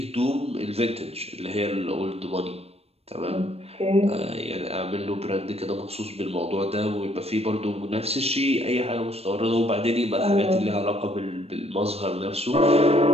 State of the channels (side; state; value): left; late; 0.29 ms